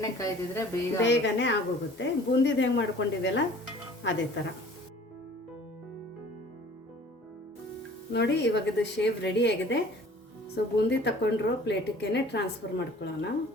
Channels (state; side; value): normal; both; correlation 0.49